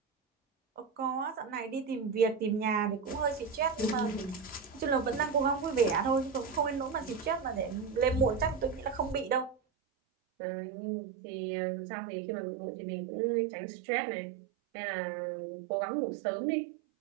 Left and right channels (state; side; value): drops out; left; at 9.6 s